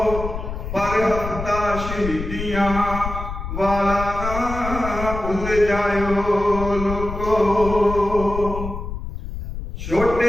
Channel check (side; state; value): left; noise; rumble, 7 dB below the sound